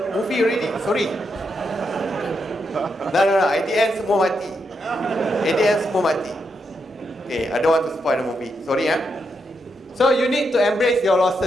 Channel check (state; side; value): normal; both; correlation 0.82